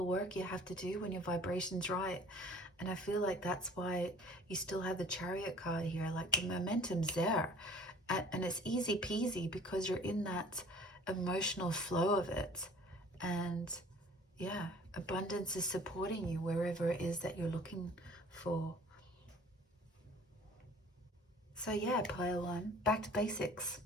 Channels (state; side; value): normal; both; correlation 0.50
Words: work you have to do when your vibration's right. And I feel like that's why you still have the Chariot card here. Like the momentum's there. And it's easy peasy because you're in that emotional flow of it. And yeah, abundance is supporting you wherever it is that you're looking for. So yeah, pile 1, back to basics.